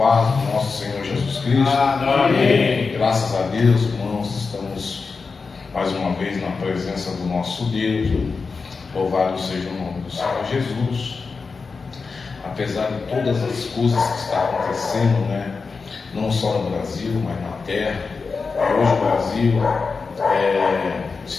do nosso Senhor Jesus Cristo. Amém. Graças a Deus, irmãos, estamos mais uma vez na presença do nosso Deus. Louvado seja o nome do Senhor Jesus. Apesar de todas as coisas que estão acontecendo, não só no Brasil, mas na terra. Hoje o Brasil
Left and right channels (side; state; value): right; quieter; 4.7 dB